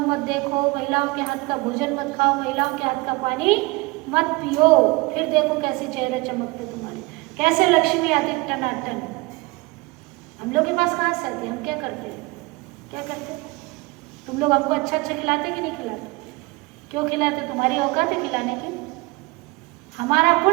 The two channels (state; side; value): quieter; left; 24.5 dB